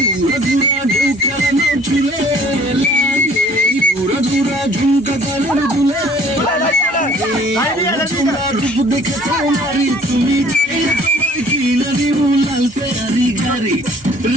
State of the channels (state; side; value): normal; both; correlation 0.54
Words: দেখে তোমারি তুমি কিনা দিব লাল ফেরারি গাড়ি